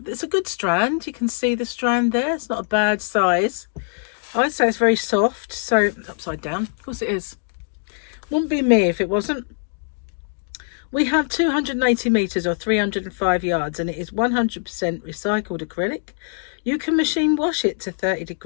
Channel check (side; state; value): right; silent; digital silence